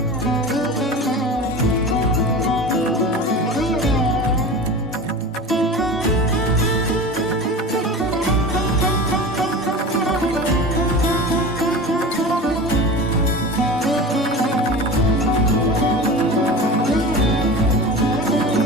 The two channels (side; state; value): both; normal; correlation 0.33